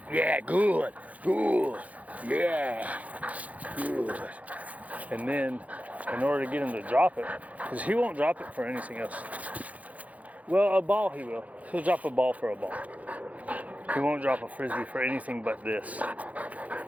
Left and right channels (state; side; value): late; left; 0.071 ms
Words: yeah, good, yeah, good. And then, in order to get him to drop it, because he won't drop it for anything else. Well, a ball he will. He'll drop a ball for a ball. He won't drop a frisbee for anything but this.